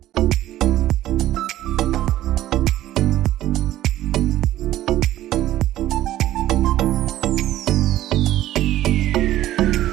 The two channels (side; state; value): left; quieter; 14.0 dB